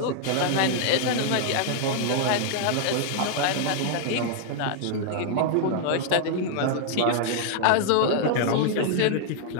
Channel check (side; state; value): both; different; correlation 0.00